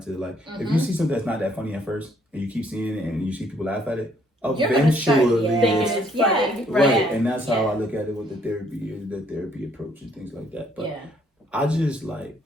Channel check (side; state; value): both; normal; correlation 0.67